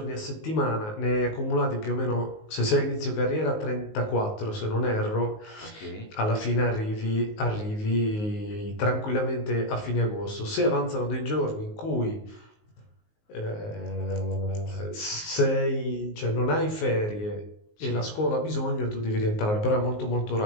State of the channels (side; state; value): right; late; 19 ms